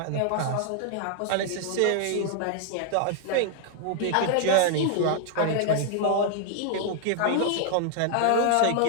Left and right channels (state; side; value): different; both; correlation -0.01